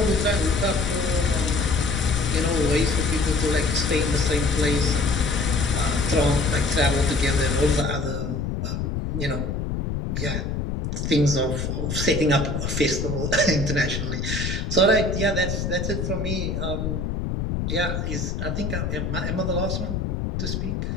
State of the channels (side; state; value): left; noise; rumble, 2 dB below the sound